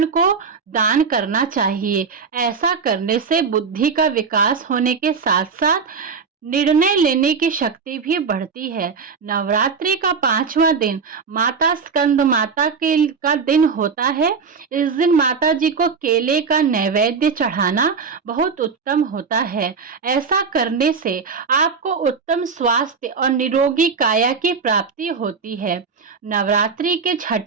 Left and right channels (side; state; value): left; quieter; 5.5 dB